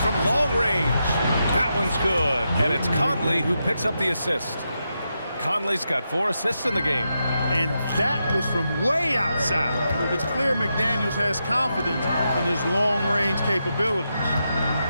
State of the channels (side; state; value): both; inverted; correlation -0.85